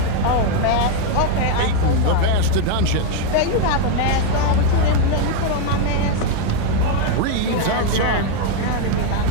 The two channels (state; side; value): different; both; correlation 0.01